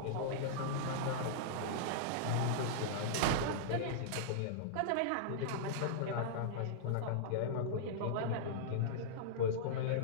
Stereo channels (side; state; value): both; different; correlation -0.02